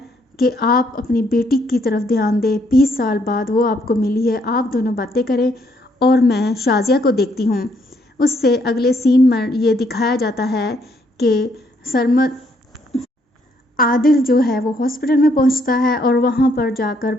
कि आप अपनी बेटी की तरफ ध्यान दें, 20 साल बाद वो आपको मिली है, आप दोनों बातें करें और मैं शाजिया को देखती हूँ। उससे अगले सीन में ये दिखाया जाता है कि सरमद आदिल जो है वो हॉस्पिटल में पहुंचता है और वहां पर जाकर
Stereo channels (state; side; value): normal; both; correlation 0.70